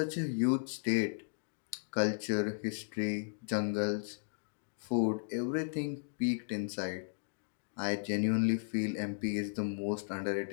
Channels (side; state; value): right; silent; digital silence